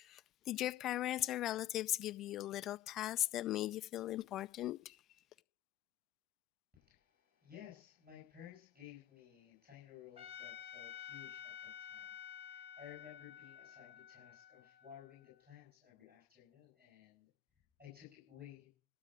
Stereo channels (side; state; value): right; quieter; 12.8 dB